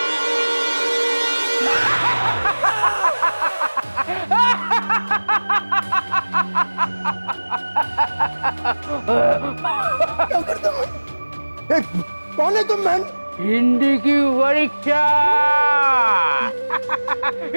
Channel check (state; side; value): inverted; both; correlation -1.00